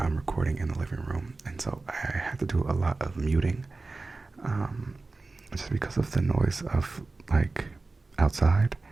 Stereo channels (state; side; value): quieter; left; 3.6 dB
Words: recording in the living room, and so I had to do a lot of muting, um, just because of the noise of like outside.